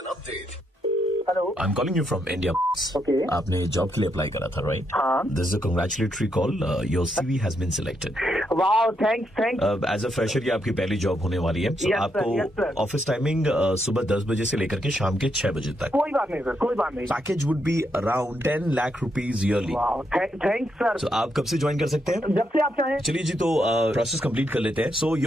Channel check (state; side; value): normal; both; correlation 0.79